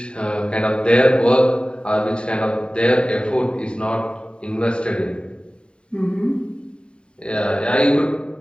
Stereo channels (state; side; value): late; right; 0.052 ms